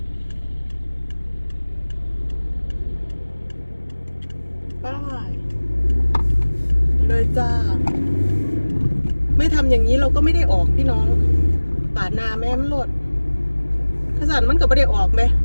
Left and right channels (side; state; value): both; inverted; correlation -1.00